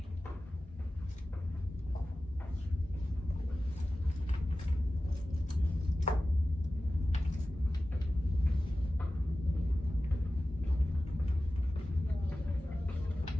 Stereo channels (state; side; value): normal; both; correlation 0.95